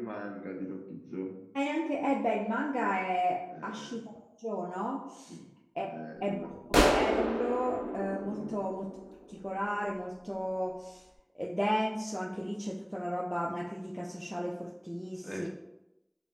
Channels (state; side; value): identical; both; correlation 1.00